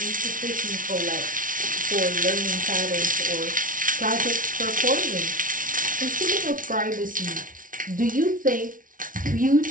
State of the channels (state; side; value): late; left; 0.39 ms